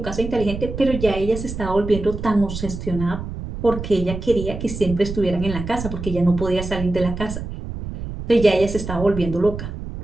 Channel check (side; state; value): right; noise; rumble, 8 dB below the sound